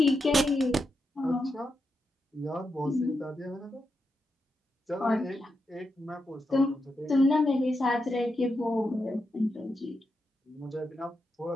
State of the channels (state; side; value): normal; both; correlation 0.86